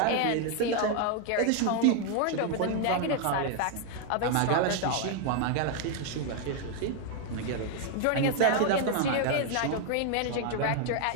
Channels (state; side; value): different; both; correlation 0.01